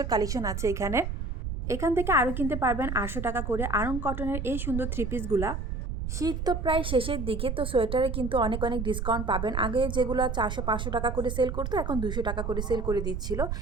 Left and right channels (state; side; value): noise; right; rumble, 4 dB below the sound